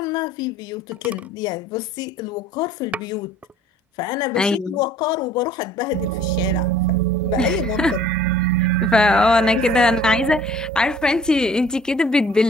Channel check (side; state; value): both; normal; correlation 0.53